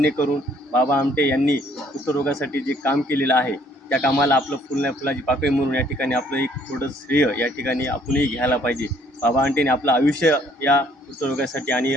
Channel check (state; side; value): normal; both; correlation 0.62